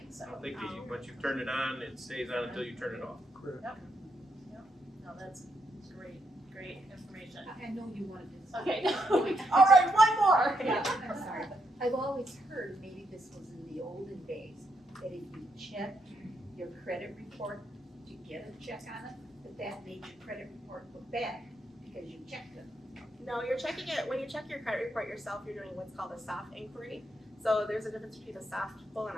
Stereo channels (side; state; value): both; normal; correlation 0.79